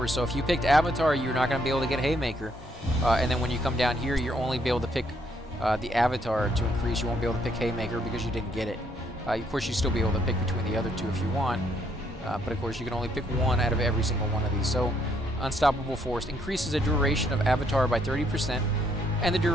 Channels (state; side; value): normal; both; correlation 0.71